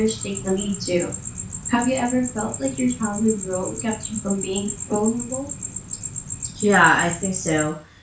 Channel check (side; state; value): both; identical; correlation 1.00